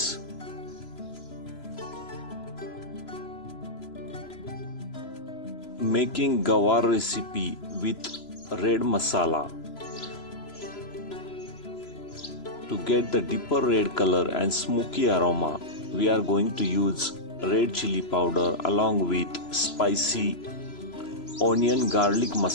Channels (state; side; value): late; right; 3.0 ms